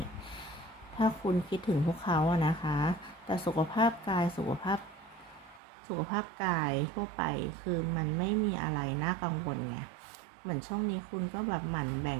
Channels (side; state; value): left; drops out; at 5.6 s